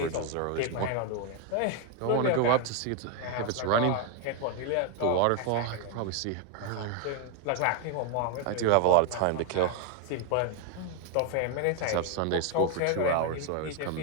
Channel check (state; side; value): different; both; correlation 0.01